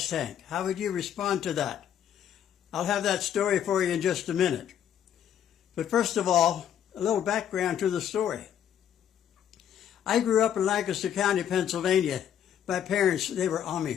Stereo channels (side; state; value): right; quieter; 9.6 dB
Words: tank? How would you respond to that? I'll have that story for you in just a minute. But first of all, a little background to the story. I grew up in Lancaster County, Pennsylvania. My parents, they were